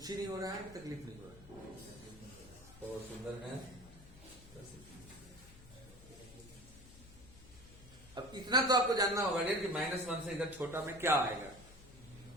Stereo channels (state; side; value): noise; left; hum, 20 dB below the sound